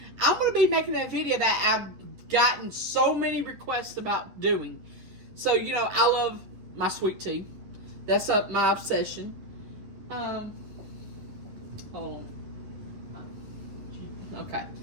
I'm going to be making a video that I've gotten so many requests about doing. So, you know, I love my sweet tea. That's my obsession. Hold on. Okay.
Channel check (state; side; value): late; left; 10 ms